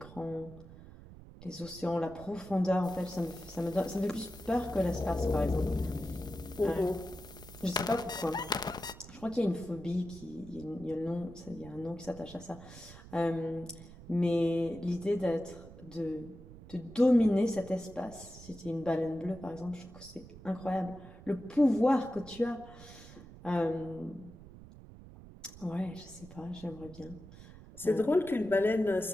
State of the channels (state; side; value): noise; right; rumble, 17 dB below the sound